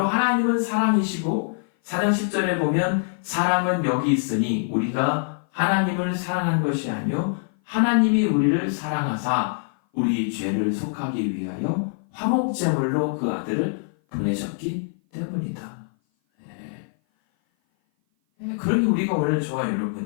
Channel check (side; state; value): right; silent; 57 dB below the other